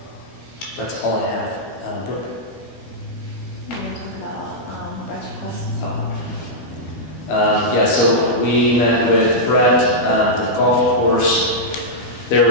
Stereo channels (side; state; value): right; late; 12 ms